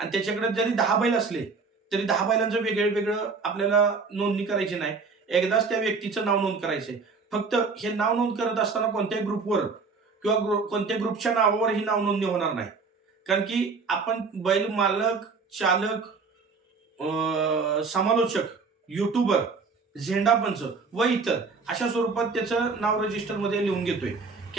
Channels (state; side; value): quieter; left; 4.6 dB